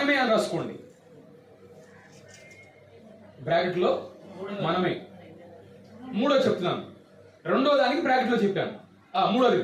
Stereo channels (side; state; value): both; identical; correlation 1.00